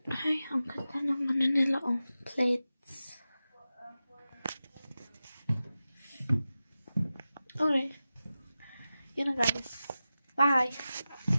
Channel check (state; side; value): inverted; both; correlation -0.94